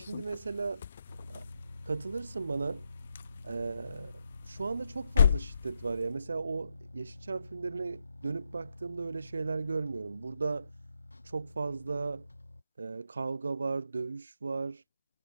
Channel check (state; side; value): inverted; both; correlation -0.82